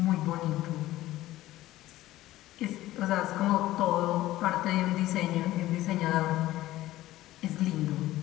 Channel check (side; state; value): right; quieter; 15.8 dB